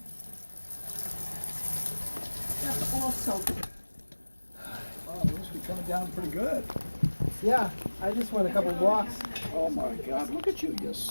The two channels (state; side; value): inverted; both; correlation -1.00